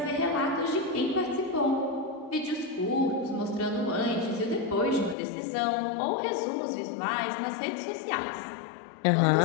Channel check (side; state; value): right; drops out; at 5.2 s